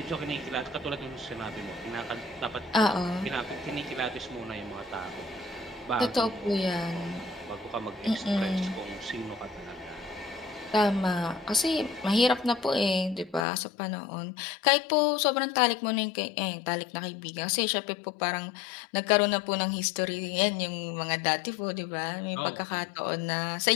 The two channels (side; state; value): right; drops out; at 13.5 s